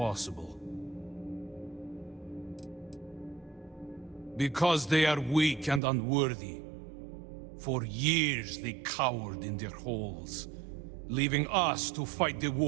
Because they are weak and unworthy. For years they cowered in their holes, leaving us to fight the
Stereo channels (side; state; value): left; drops out; at 5.8 s